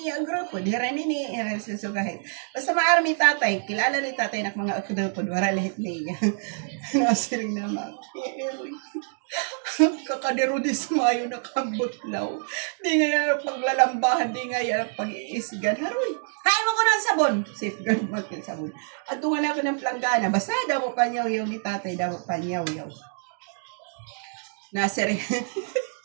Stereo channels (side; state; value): left; silent; 58 dB below the other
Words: iagropod. Hira ni susugahit. Basta maarami tatay, kilala ni tatay na mga akudopod, wala lahit niya. Nasiring naman. Kakadero di sumayo na kambutlaw. Di nga yan paglalambahan, di nga yan pag-iisgan. Haroy, hain mo ko ng sabon. Safeguard mo yung sabon. At tungan ako ng planggana. Basta daw pa niyaw ni tatay, daw pa niyaw. Nasir.